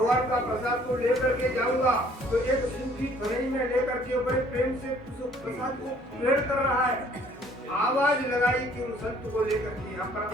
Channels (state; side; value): normal; both; correlation 0.58